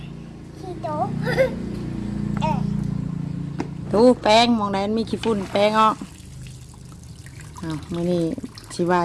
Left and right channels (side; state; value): both; identical; correlation 1.00